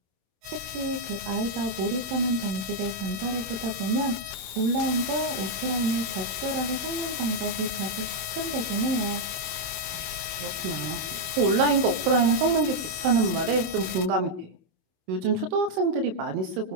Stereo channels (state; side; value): late; left; 26 ms